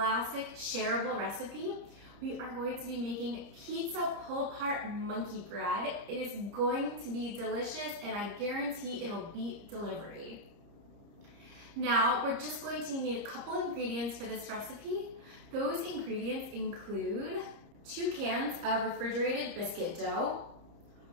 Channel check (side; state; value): left; late; 30 ms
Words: shareable recipe. We are going to be making pizza pull-apart monkey bread. It is going to be delicious and I guarantee it'll beat delivery. Now, we're just going to need a couple ingredients for this recipe. Those ingredients include 2 cans of refrigerated biscuit dough,